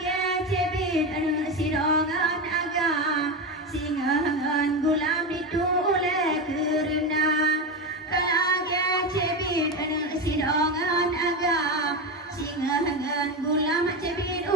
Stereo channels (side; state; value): both; normal; correlation 0.17